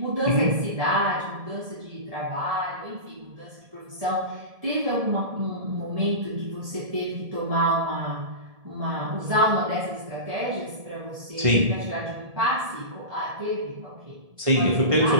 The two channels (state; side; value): late; left; 1.7 ms